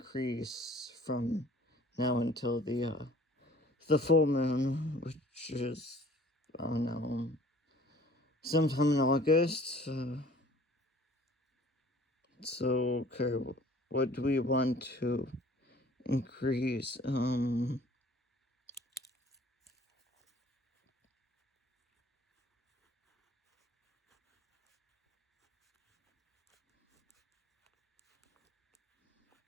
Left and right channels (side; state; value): both; normal; correlation 0.51